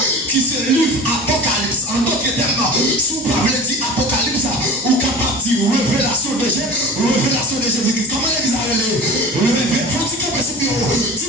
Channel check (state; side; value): normal; both; correlation 0.36